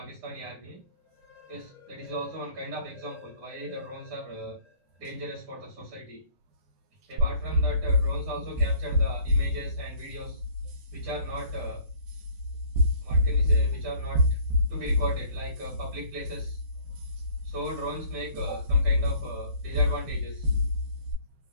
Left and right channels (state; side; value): late; left; 12 ms